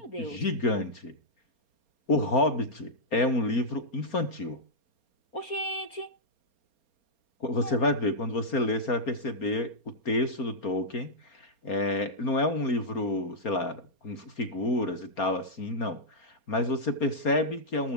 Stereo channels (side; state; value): right; late; 4.3 ms